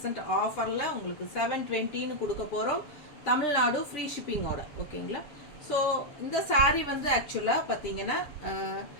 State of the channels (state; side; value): late; right; 6.9 ms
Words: ஆஃபரில் உங்களுக்கு 720ன்னு கொடுக்க போகிறோம். தமிழ்நாடு ஃப்ரீ ஷிப்பிங்கோட ஓகேங்களா. ஸோ இந்த சாரீ வந்து ஆக்சுவலாக பார்த்தீங்கன்னா